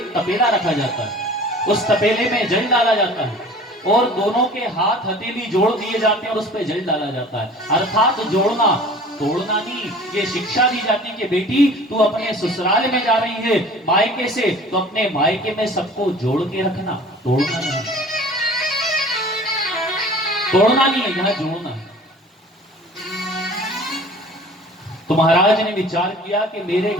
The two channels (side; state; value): both; normal; correlation 0.45